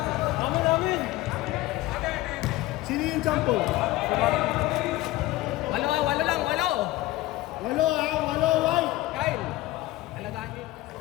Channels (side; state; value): right; quieter; 17.2 dB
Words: Sino yung sample? Walo lang. Walo ha, walo white. Kyle, alagaan niyo.